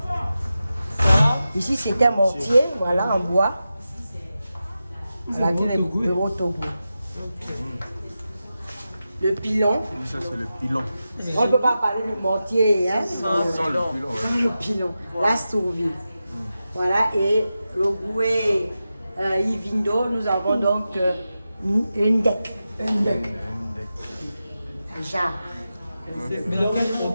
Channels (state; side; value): inverted; both; correlation -0.92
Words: Ici, c'est un mortier, voilà, en bois. Voilà, le Rotogo. Le pilon. Ça, c'est le pilon. On ne peut pas parler du mortier, hein? Sans le pilon, ouais. Le pilon. La sourvie. Voilà, et le Goué Ivindo, nous avons donc une deck. Un jarre. Mais donc, on